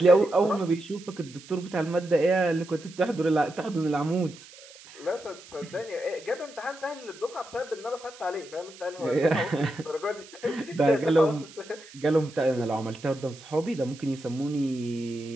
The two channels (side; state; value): right; noise; hiss, 20 dB below the sound